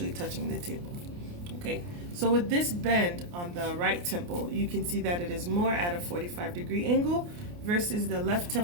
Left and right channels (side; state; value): left; late; 29 ms